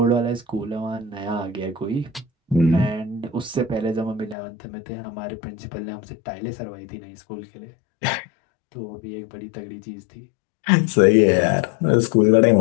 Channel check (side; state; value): right; drops out; at 4.4 s